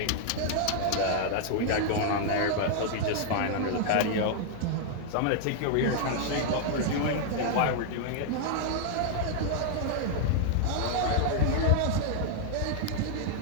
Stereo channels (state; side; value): different; both; correlation -0.01